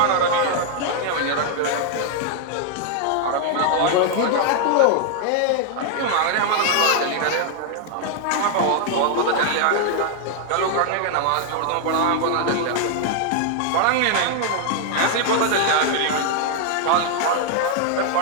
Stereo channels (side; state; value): both; different; correlation 0.00